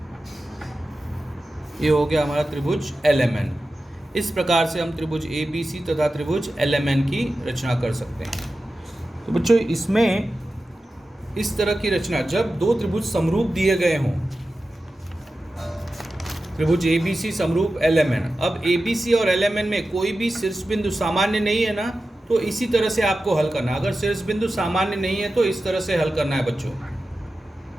ये हो गया हमारा त्रिभुज LMN। इस प्रकार से हम त्रिभुज ABC तथा त्रिभुज LMN की रचना कर सकते हैं। तो बच्चों इसमें इस तरह की रचना, जब दो त्रिभुज समरूप दिए गए हों, त्रिभुज ABC समरूप LMN, अब ABC और LMN में कोई भी शीर्ष बिंदु सामान्य नहीं है ना, तो इसी तरह से आपको हल करना। अगर शीर्ष बिंदु सामान्य नहीं है तो इस तरह से हल करना है बच्चों,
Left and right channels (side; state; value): both; normal; correlation 0.93